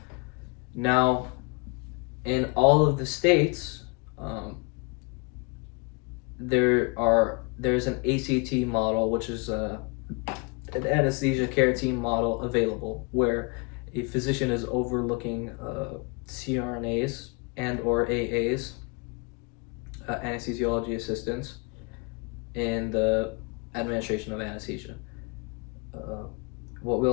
Now, in all of the states, there's an ACT model, which is an anesthesia care team model available, where a physician is overlooking CRNAs and or AAs, anesthesiology assistants, in the administration of anesthesia.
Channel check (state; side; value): quieter; right; 31.6 dB